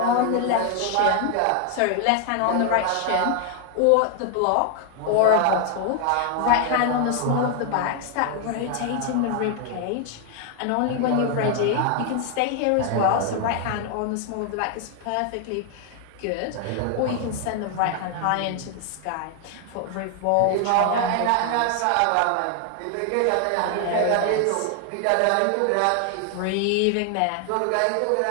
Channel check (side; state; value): both; different; correlation 0.00